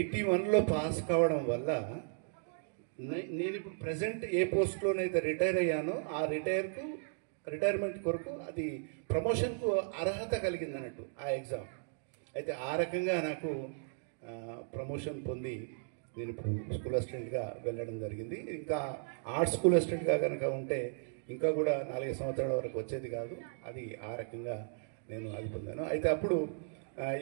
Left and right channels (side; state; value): left; silent; digital silence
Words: పాస్ కావడం వల్ల నేను ఇప్పుడు ప్రజెంట్ ఏ పోస్ట్లోనైతే రిటైర్ అయ్యానో ఆ రిటైర్మెంట్ కొరకు అది ప్రమోషన్కు అర్హత కలిగింది అన్నట్టు ఆ ఎగ్జామ్. అయితే ఆ రకంగా నాకు ప్రమోషన్ పొంది నేను ఇప్పుడు స్కూల్ అసిస్టెంట్గా వెళ్ళడం జరిగింది. ఇంకా ఆర్ట్స్ స్కూల్ అసిస్టెంట్గా కనుక ఉంటే ఇంకా కూడా 4 సంవత్సరాల వరకు వచ్చేది కాదు. అది ఆ రకంగా నేను అది పొందాను. అయితే అప్పుడు